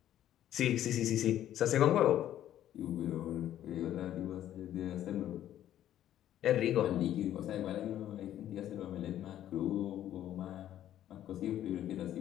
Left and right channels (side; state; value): right; quieter; 11.8 dB